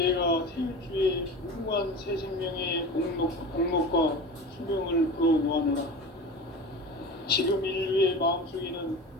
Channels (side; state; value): both; normal; correlation 0.32